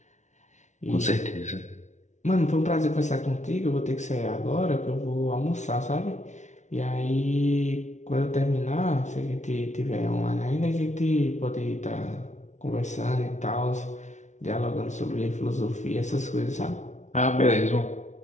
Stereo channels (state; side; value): late; right; 0.34 ms